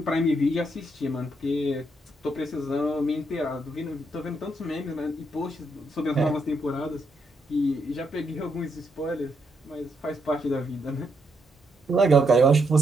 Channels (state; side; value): normal; both; correlation 0.77